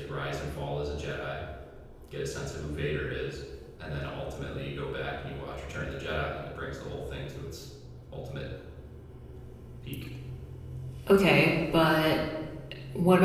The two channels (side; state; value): both; identical; correlation 1.00